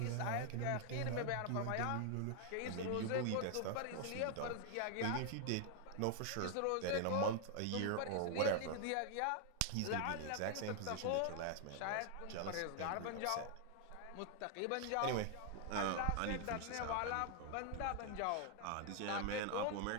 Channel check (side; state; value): both; different; correlation 0.00